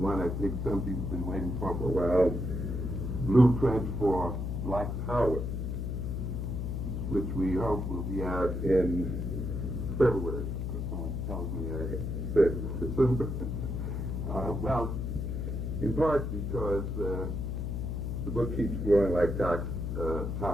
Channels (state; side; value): noise; left; hum, 2 dB below the sound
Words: I think some people have been waiting for a while, Blueprint for Black Power, which we hope will be out in February. Someone tells me I said December. Well, in part because the book keeps growing like